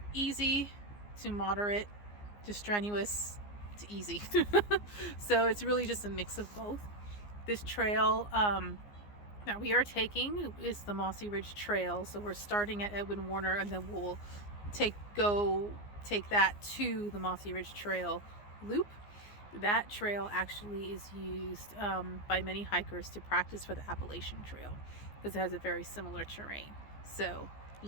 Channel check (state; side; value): late; right; 15 ms